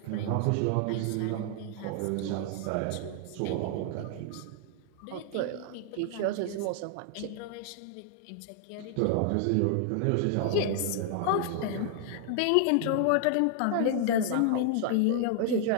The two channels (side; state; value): both; different; correlation 0.00